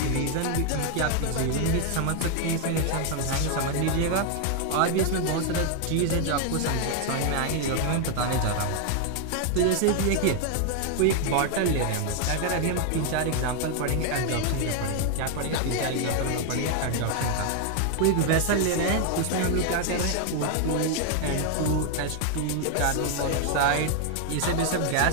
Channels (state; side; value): different; both; correlation 0.00